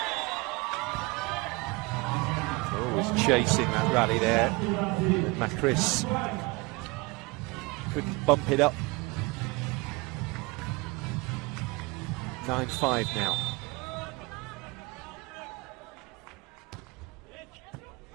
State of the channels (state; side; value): quieter; left; 25.6 dB